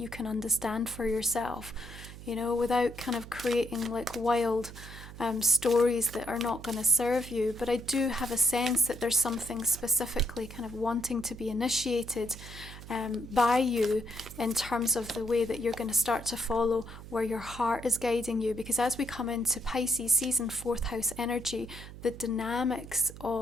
can understand for yourself, you know, without kind of creating like wild stories that are not going to serve you. But I do have a sense that there's something specifically kind of wanting to be initiated by you in terms of the way that you're going to start to follow where your heart is guiding you. Because as we come into Pisces season, fourth house energy, the dynamics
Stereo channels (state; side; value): noise; right; hum, 14 dB below the sound